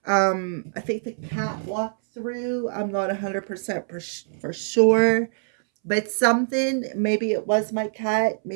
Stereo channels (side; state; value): left; silent; 63 dB below the other